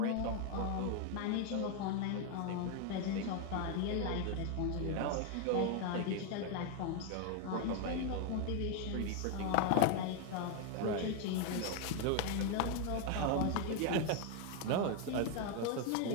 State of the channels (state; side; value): different; both; correlation 0.01